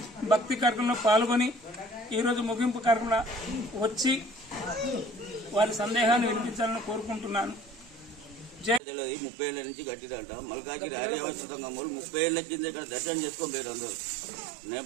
భక్తి కార్యక్రమంలో పాల్గొని ఈరోజు ముగింపు కార్యక్రమంలో వచ్చి వారి సందేహాన్ని వినిపించాలని కోరుకుంటున్నాను. 30 ఏళ్ల నుంచి కట్టిదంట. మల్కాజిరి ఆర్యవస్థంగా 30 ఏళ్ల కింద ఇక్కడ దర్శనం చేసుకోలేరు అందరూ.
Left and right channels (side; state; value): left; drops out; at 8.8 s